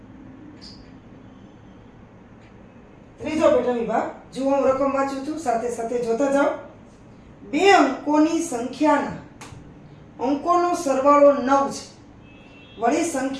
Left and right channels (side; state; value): both; identical; correlation 1.00